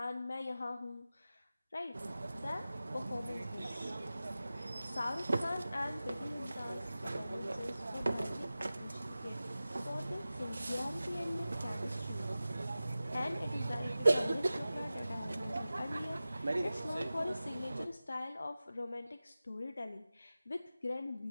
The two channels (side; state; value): both; inverted; correlation -0.96